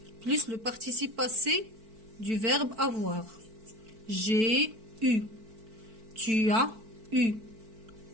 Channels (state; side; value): late; left; 4.5 ms